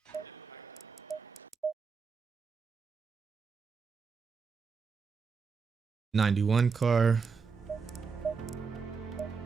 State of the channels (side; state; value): left; quieter; 5.4 dB